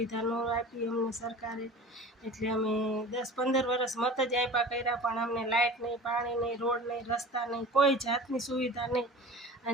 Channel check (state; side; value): normal; both; correlation 0.38